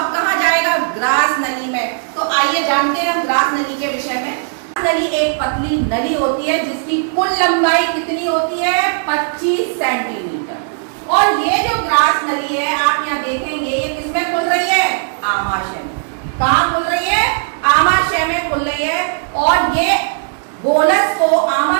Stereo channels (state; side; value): silent; left; digital silence